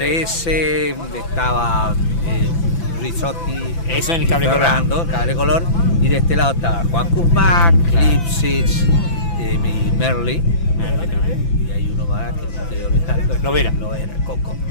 estaba Rizotti, eso en el Cable Color. Fernando, Cable Color, y de este lado estaba Juan Kuzmac, Lipsitz, y Merly. Y hay uno más que no estoy olvidando. Lovera, Coco.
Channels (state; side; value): late; right; 5.9 ms